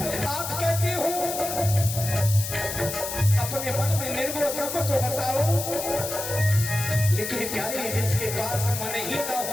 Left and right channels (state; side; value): noise; left; hiss, 5 dB below the sound